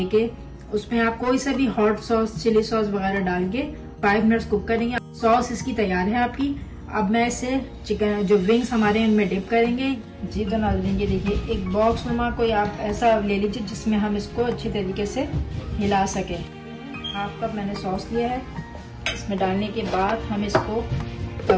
उसमें आप कोई सा भी हॉट सॉस, चिली सॉस वगैरह डाल के 5 मिनट्स कुक करेंगे। सॉस इसकी तैयार है आपकी। अब मैं इसे चिकन जो विंग्स हमारे इनमें डिप करेंगे। जी तो नाज़रीन ये देखिए एक बॉक्स नुमा कोई आप ऐसा ले लीजिए जिसमें हम इसको अच्छी तरीके से हिला सके। 1/2 कप मैंने सॉस लिया है। इसमें डालने के बाद हम इसको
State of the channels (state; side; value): identical; both; correlation 1.00